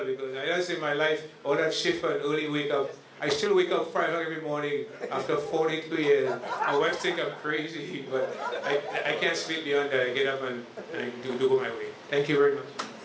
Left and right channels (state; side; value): identical; both; correlation 1.00